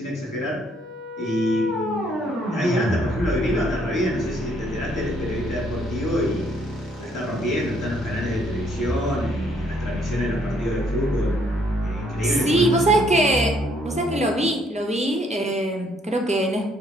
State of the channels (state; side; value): normal; both; correlation 0.67